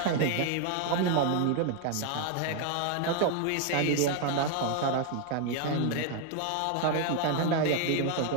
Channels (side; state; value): both; different; correlation 0.00